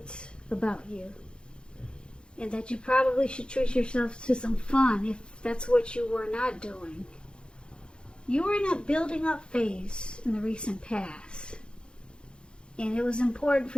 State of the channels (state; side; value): late; right; 0.053 ms